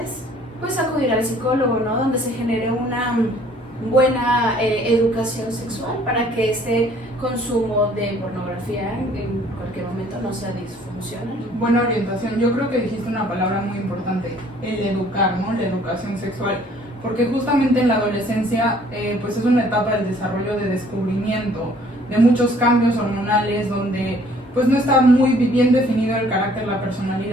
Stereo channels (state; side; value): normal; both; correlation 0.58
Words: pues acudir al psicólogo, ¿no? Donde se genere una buena educación sexual para que este consumo de pornografía en cualquier momento no sea disfuncional. Buena orientación. Yo creo que dijiste una palabra muy importante, el educar, ¿no? La educación sexual. Porque justamente en la adolescencia pues es una etapa del desarrollo de descubrimiento, de muchos cambios hormonales, donde pues no está muy bien definido el carácter, la